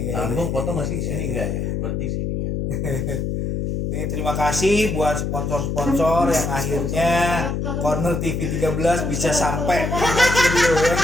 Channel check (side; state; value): left; noise; hum, 2 dB below the sound